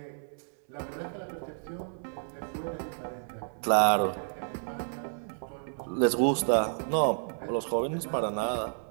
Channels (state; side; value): silent; left; 57 dB below the other